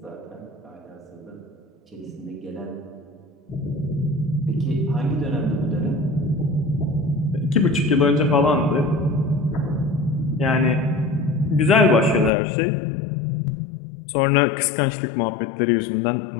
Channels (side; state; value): right; drops out; at 12.3 s